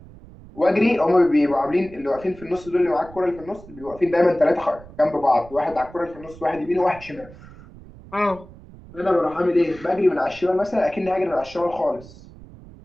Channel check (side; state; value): right; noise; rumble, 19 dB below the sound